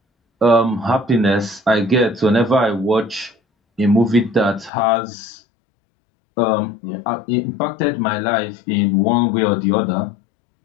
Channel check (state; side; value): drops out; right; at 4.7 s